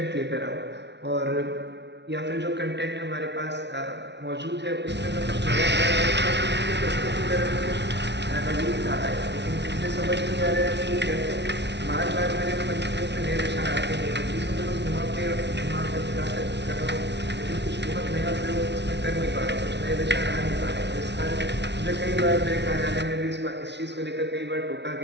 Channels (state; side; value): late; left; 0.50 ms